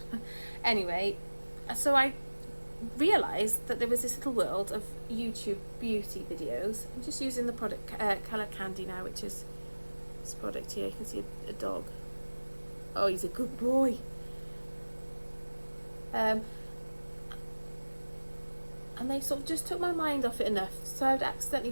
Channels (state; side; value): inverted; both; correlation -1.00